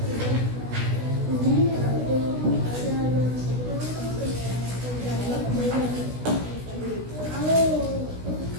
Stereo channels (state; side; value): late; left; 16 ms